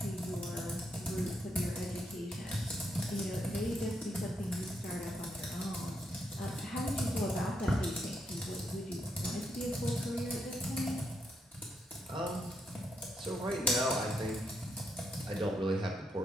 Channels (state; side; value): normal; both; correlation 0.79